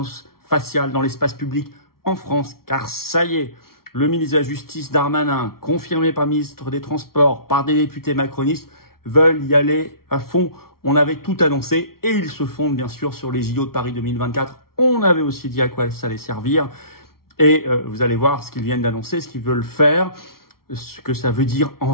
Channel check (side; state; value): right; late; 0.94 ms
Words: faciale dans l'espace public en France, car ça y est, le ministre de la Justice Darmanin, confirmé par le ministre des Transports, par des députés macronistes, veulent y aller à fond. On avait tout annoncé et ils se fondent bien sûr sur les JO de Paris 2024. On avait aussi dit à quoi ça allait servir et vous allez voir ce qu'ils viennent d'annoncer, ce qu'ils veulent faire, ce que ça veut dire en